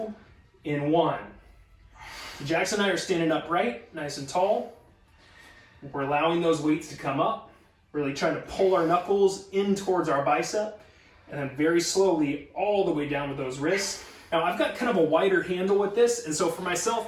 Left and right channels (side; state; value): both; identical; correlation 1.00